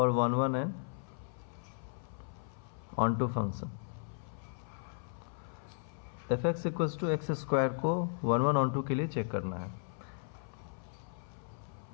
1 1 and onto function. F X equals to X square को 1 1 ऑन टू के लिए चेक करना है।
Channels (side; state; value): right; silent; 54 dB below the other